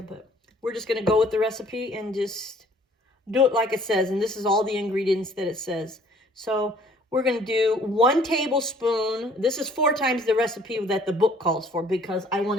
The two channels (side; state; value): both; normal; correlation 0.57